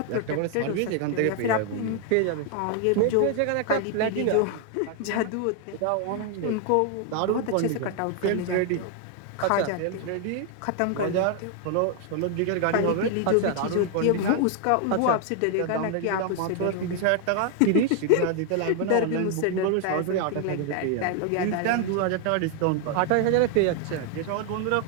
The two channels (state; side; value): different; both; correlation 0.00